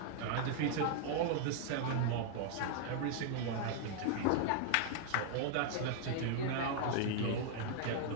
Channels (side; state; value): both; different; correlation 0.00